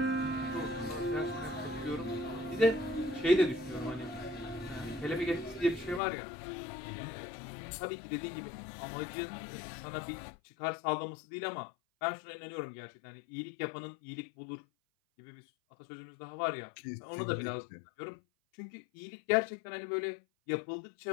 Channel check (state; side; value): drops out; right; at 6.0 s